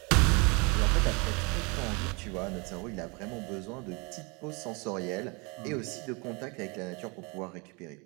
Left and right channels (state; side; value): quieter; left; 29.9 dB